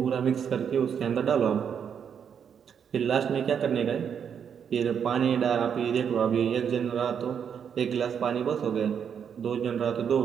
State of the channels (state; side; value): quieter; left; 7.7 dB